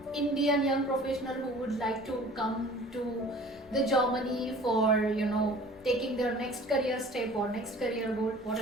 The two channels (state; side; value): normal; both; correlation 0.46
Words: Indian young professionals who would like to come to the Germany for taking their next career step or next career goal. What